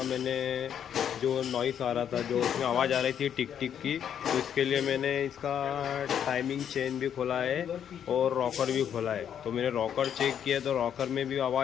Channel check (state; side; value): quieter; right; 8.9 dB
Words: मैंने जो नॉइस आ रहा था, जो उसमें आवाज़ आ रही थी टिक टिक की, तो इसके लिए मैंने इसका टाइमिंग चेन भी खोला है और रॉकर भी खोला है। तो मैंने रॉकर चेक किया तो रॉकर में भी